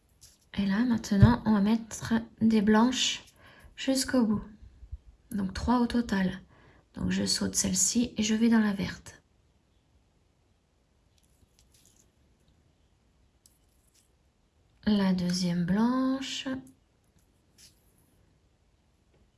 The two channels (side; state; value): both; identical; correlation 1.00